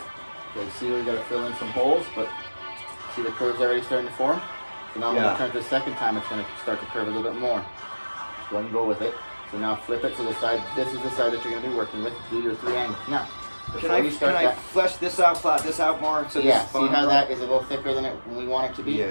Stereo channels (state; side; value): inverted; both; correlation -1.00